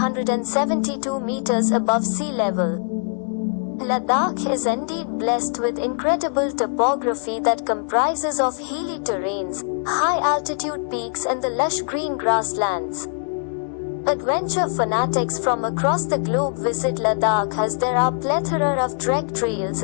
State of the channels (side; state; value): right; silent; digital silence